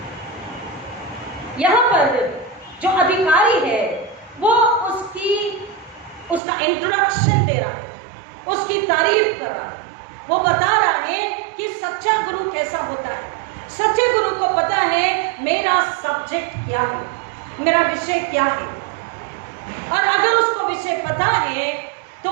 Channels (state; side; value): drops out; left; at 6.4 s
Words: यहां पर जो अधिकारी है वो उसका इंट्रोडक्शन दे रहा है, उसकी तारीफ कर रहा है, वो बता रहा है कि सच्चा गुरु कैसा होता है। सच्चे गुरु को पता है मेरा सब्जेक्ट क्या है, मेरा विषय क्या है, और अगर उसको विषय पता है तो